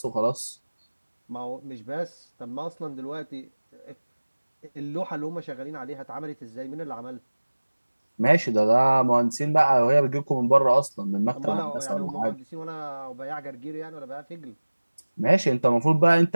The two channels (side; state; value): both; inverted; correlation -1.00